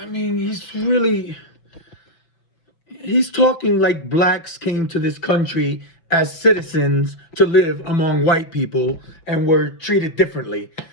mean, he's talking like blacks came to this country as citizens to live among white people and were treated differently.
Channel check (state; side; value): late; right; 5.9 ms